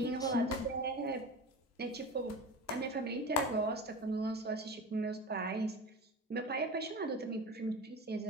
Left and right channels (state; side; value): normal; both; correlation 0.30